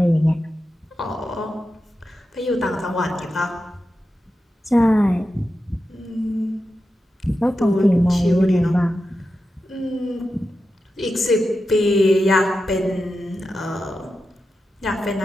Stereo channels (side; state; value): both; normal; correlation 0.90